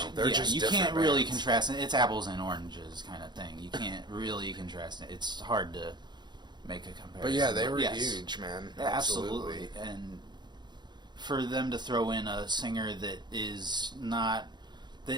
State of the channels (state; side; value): late; left; 0.21 ms